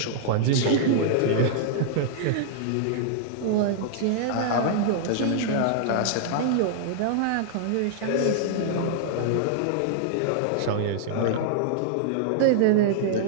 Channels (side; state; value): both; different; correlation -0.01